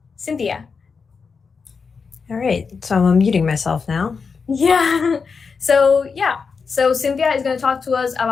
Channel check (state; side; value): quieter; right; 5.3 dB